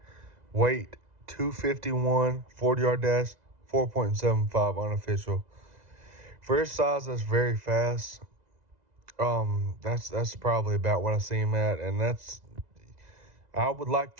Weight, 251. 40-yard dash, 4.75 unofficial. For his size, that's very fast. That's probably about what I see him at, and I would like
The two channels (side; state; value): left; late; 2.0 ms